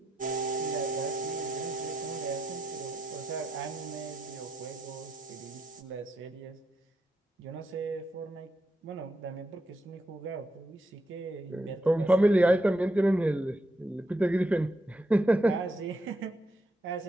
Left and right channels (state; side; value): normal; both; correlation 0.82